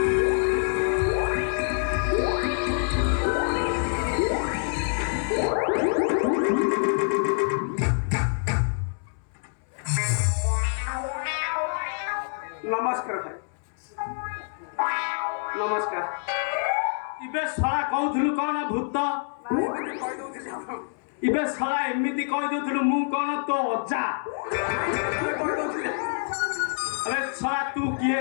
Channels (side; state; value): right; silent; 61 dB below the other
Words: नमस्कार भाई नमस्कार इबे सला कहउथलु कोन भूत एमिति कहि दउथिली हम इबे सला एमिति कहि दउथलु मु कोन तो अज्जा कहि दउथिली अबे सला तू किए